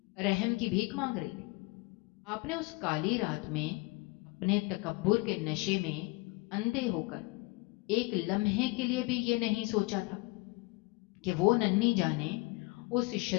رحم کی بھیک مانگ رہی تھی، آپ نے اس کالی رات میں اپنے تکبر کے نشے میں اندھے ہو کر ایک لمحے کے لیے بھی یہ نہیں سوچا تھا کہ وہ ننھی جانیں اس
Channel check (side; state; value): right; quieter; 24.9 dB